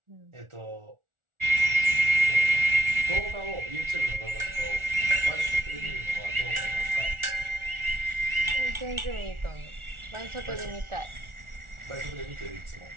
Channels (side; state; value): left; late; 1.4 ms